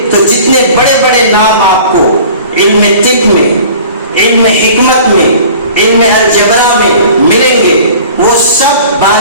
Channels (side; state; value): both; inverted; correlation -0.45